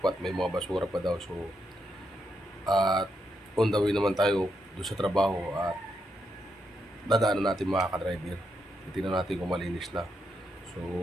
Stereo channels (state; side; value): normal; both; correlation 0.81